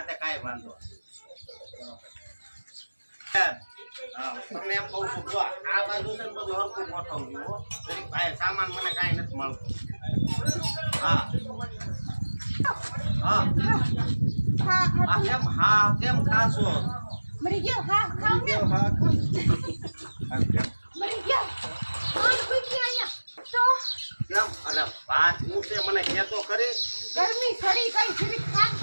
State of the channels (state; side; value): inverted; both; correlation -1.00